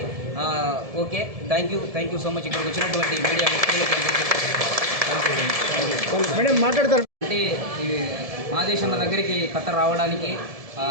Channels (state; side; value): late; left; 1.7 ms